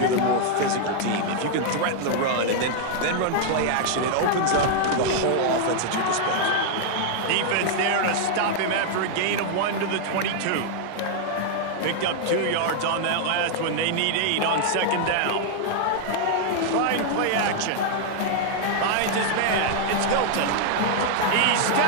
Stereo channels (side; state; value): both; different; correlation -0.01